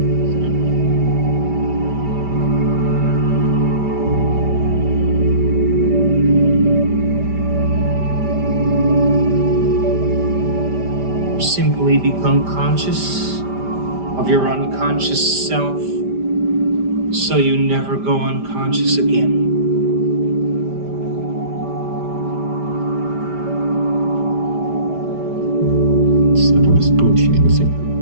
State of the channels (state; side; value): late; left; 5.1 ms